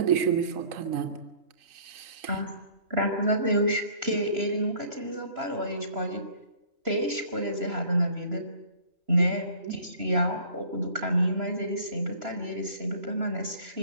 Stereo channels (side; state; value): left; late; 3.0 ms